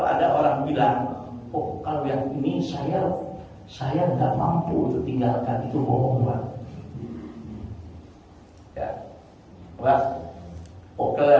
ada orang bilang, oh kalau yang ini saya nggak mampu untuk tinggalkan, itu bohong Pak. Ya, Pak. Oke,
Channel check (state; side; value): identical; both; correlation 1.00